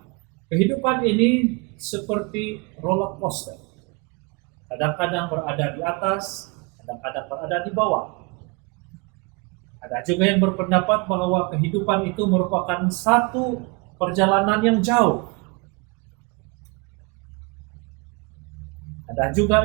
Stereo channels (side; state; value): left; quieter; 29.9 dB